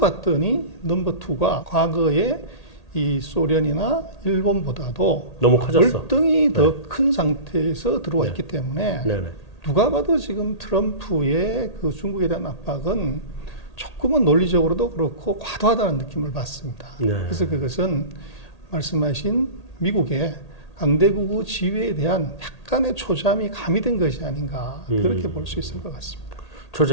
넘버 2가 과거에 이 소련이나 일본보다도 너무 커졌어. 월등히 더 큰 상태에서 들어와 있기 때문에 네. 네. 누가 봐도 지금 트럼프의 그 중국에 대한 압박은 조금은 논리적으로도 그렇고 과도하다는 느낌을 받습니다. 네. 그래서 그것은 말씀하신 미국의 강대국의 지위에 대한 약간의 초잠이 가미된 것이 아닌가 그렇게 볼 수 있을 것 같습니다.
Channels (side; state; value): right; late; 1.8 ms